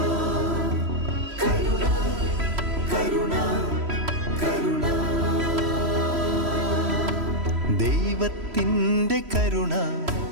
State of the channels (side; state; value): left; late; 3.1 ms